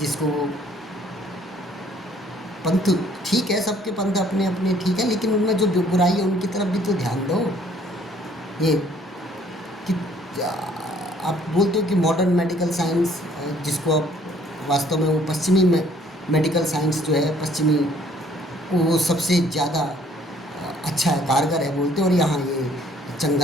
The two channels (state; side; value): normal; both; correlation 0.60